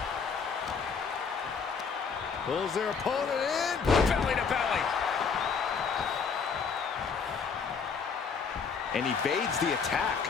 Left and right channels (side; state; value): right; quieter; 5.7 dB